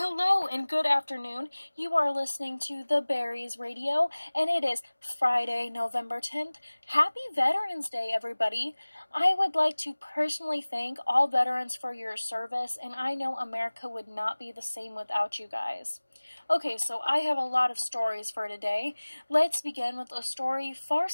and good afternoon. You are listening to The Berries Radio, and it is Friday, November 10th. Happy Veterans Day, everybody. I would like to personally thank all veterans for your service, and I know America would not be the same without you guys. Okay, so I have a lot of stories for today. Let's begin with a story far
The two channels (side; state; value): both; inverted; correlation -1.00